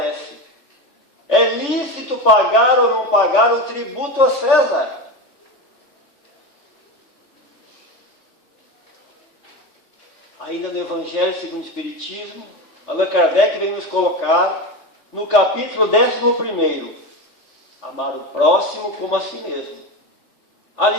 É lícito pagar ou não pagar o tributo a César? Ainda no Evangelho segundo o Espiritismo, Allan Kardec vem nos colocar no capítulo 11, amar o próximo como a si mesmo. A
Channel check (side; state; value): right; late; 3.4 ms